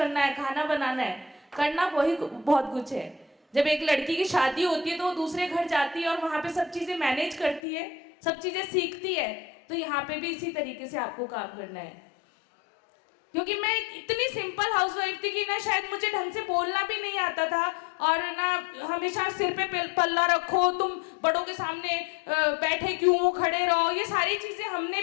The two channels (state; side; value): drops out; right; at 7.6 s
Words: है, खाना बनाना है, करना वही बहुत कुछ है। जब एक लड़की की शादी होती है तो वो दूसरे घर जाती है और वहां पे सब चीजें मैनेज करती है, सब चीजें सीखती है। तो यहाँ पे भी इसी तरीके से आपको काम करना है। क्योंकि मैं इतनी सिंपल हाउसवाइफ थी कि ना शायद मुझे ढंग से बोलना भी नहीं आता था, और ना हमेशा सिर पे पल्ला रखो, तुम बड़ों के सामने बैठे क्यों हो, खड़े रहो, ये सारी चीजें हमने